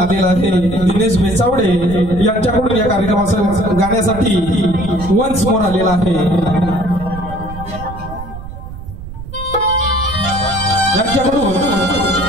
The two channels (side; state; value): right; noise; rumble, 12 dB below the sound